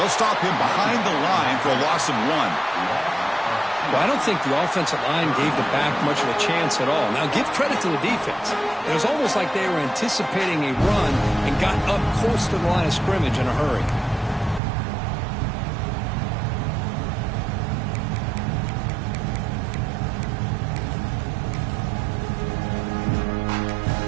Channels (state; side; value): drops out; left; at 14.6 s